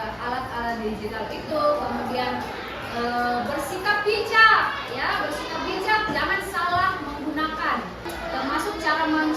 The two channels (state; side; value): identical; both; correlation 1.00